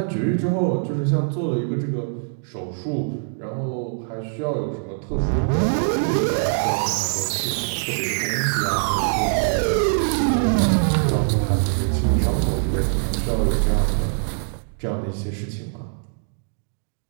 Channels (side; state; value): left; silent; digital silence